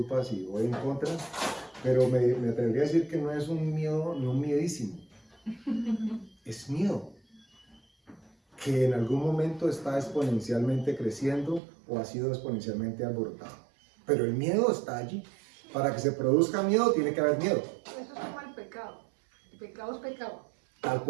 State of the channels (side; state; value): left; drops out; at 11.6 s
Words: si voy en contra, pero me atrevería a decir que no es un miedo, no un miedísimo. Es miedo que en algún momento está exponencialmente creciendo o ha sido exponencialmente alborotado. Pero el miedo está allí. Para que se produzca miedo, tiene que haber miedo. Eso es como el pecado. El pecado es pecado. Tal